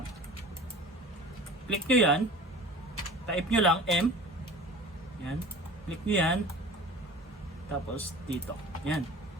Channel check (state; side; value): normal; both; correlation 0.41